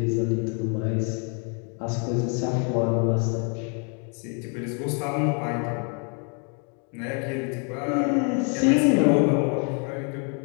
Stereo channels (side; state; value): right; quieter; 39.4 dB